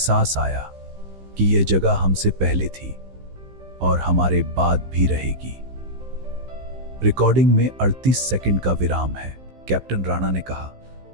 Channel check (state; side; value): late; left; 15 ms